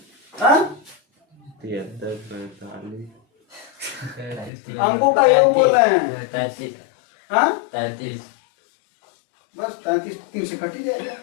था, अंकों का ये बोल रहे हैं 33, बस 33 3 से कट ही जाएगा,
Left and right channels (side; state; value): right; drops out; at 4.5 s